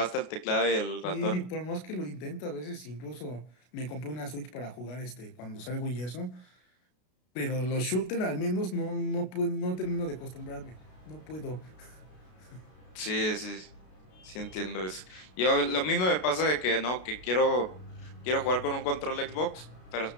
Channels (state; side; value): late; right; 33 ms